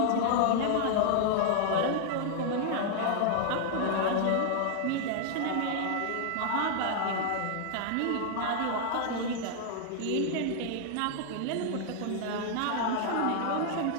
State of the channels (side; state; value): both; different; correlation 0.00